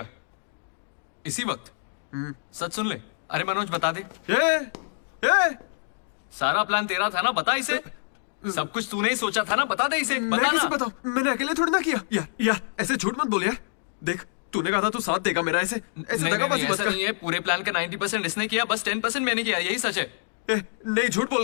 इसी वक्त। सच सुन ले। अरे मनोज बता दे। ये सारा प्लान तेरा था ना, बता इसे। सब कुछ तूने ही सोचा था ना, बता दे इसे। मैं बता कैसे ना। बताऊं? मैंने अकेले थोड़ी ना किया। यार ऐसे झूठ मत बोल यार। देख तूने कहा था तू साथ देगा मेरा, ऐसे नहीं, दगाबाजी मत ऐसा कर। नहीं है। पूरे प्लान का 90% इसने किया, बस 10% मैंने किया, यही सच है। नहीं झूठ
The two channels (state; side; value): silent; right; digital silence